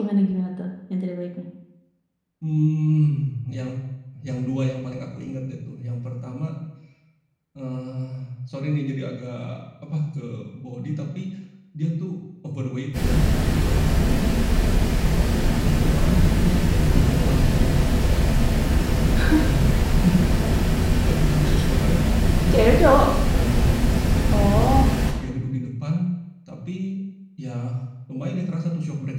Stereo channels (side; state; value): both; identical; correlation 1.00